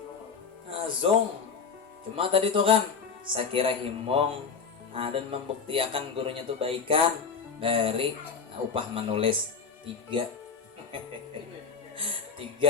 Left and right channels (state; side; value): quieter; right; 5.7 dB